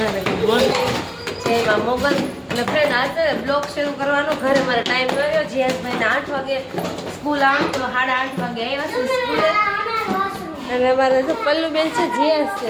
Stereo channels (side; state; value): both; identical; correlation 1.00